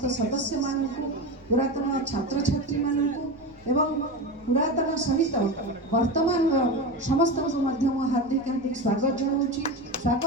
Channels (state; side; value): noise; right; rumble, 28 dB below the sound